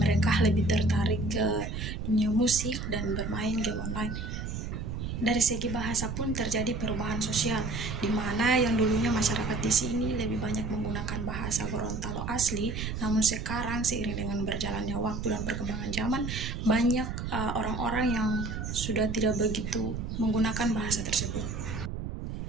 lebih tertarik ke dunia musik dan bermain game online. Dari segi bahasa pun terjadi perubahan sosial, di mana yang dulunya masyarakat di sini lebih banyak menggunakan bahasa Gorontalo asli, namun sekarang seiring dengan berjalannya waktu dan perkembangan zaman, banyak orang-orang yang sudah tidak begitu menggunakan bahasa tersebut.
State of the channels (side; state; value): right; noise; rumble, 5 dB below the sound